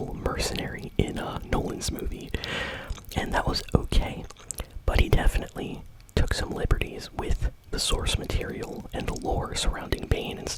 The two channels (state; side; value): identical; both; correlation 1.00